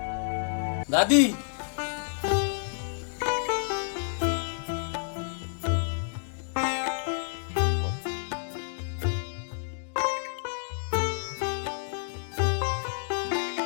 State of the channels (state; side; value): silent; right; digital silence